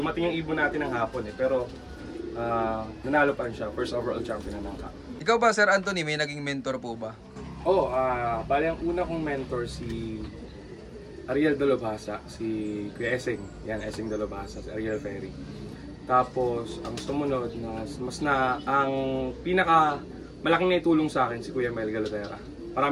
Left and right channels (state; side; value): identical; both; correlation 1.00